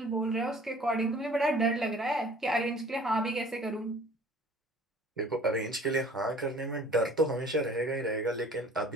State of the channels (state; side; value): normal; both; correlation 0.50